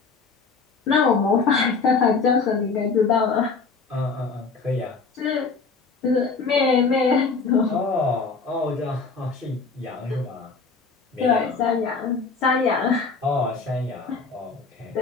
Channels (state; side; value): quieter; right; 4.6 dB